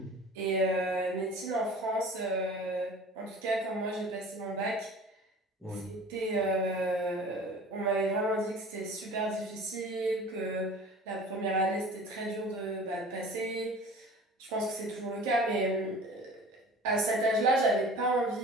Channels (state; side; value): normal; both; correlation 0.42